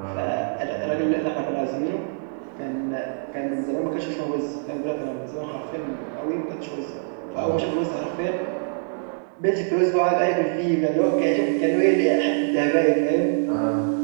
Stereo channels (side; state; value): left; silent; digital silence